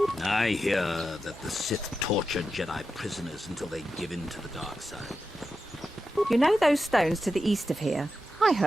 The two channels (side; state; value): both; normal; correlation 0.90